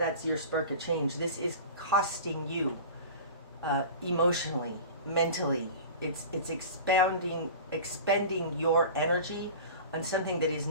your Spark of Change. This is costing you emotionally, mentally. It's expending your energy on something that is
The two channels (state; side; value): inverted; both; correlation -0.35